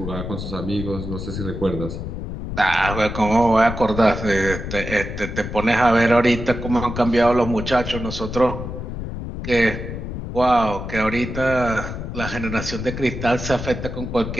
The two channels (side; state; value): left; noise; rumble, 7 dB below the sound